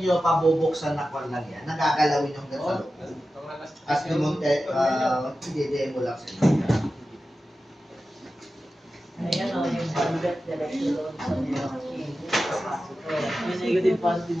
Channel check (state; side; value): normal; both; correlation 0.93